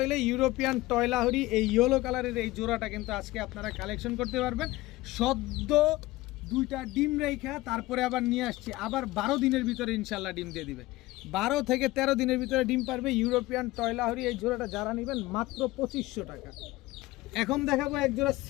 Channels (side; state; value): right; quieter; 18.9 dB